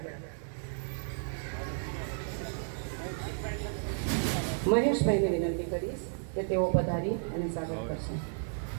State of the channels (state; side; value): silent; left; 56 dB below the other